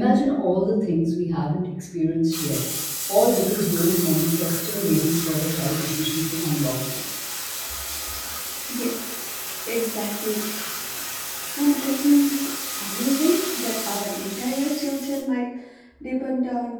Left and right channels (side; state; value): both; identical; correlation 1.00